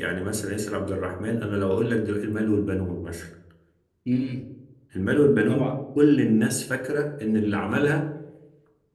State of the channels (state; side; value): identical; both; correlation 1.00